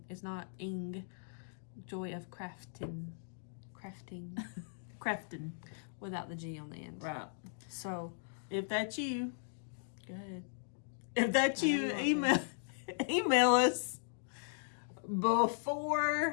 It's not ing. Joy of Crafting. Crafting. Without the G on the end. Right. So. If that's you. Go ahead. If that's you, email us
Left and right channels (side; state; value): right; silent; digital silence